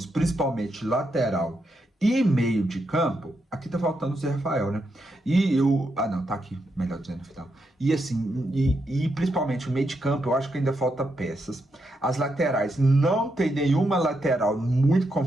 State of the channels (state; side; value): normal; both; correlation 0.82